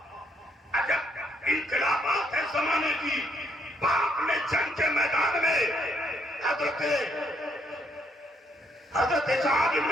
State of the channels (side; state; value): both; normal; correlation 0.72